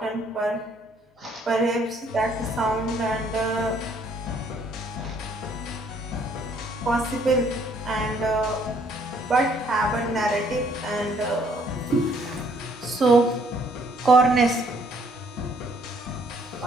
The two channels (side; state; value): both; normal; correlation 0.64